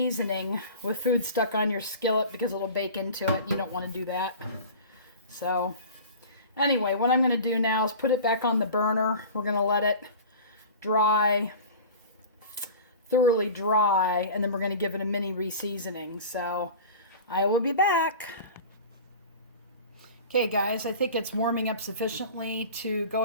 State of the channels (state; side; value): inverted; both; correlation -0.37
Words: with food stuck on your skillet because it'll bake into it. You don't want to do that. So anyway, what I'm going to do now is put it back on the burner. We're going to let it dry, thoroughly dry, and then we're going to give it a mini reseasoning. So I will be back. Okay guys, I think it's warming up sufficiently to go